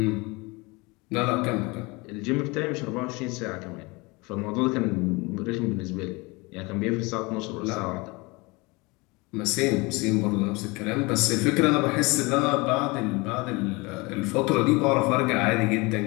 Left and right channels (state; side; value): quieter; right; 25.6 dB